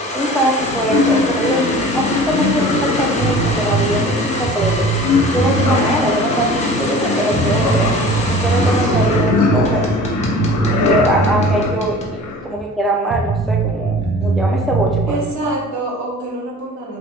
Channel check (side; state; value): both; normal; correlation 0.42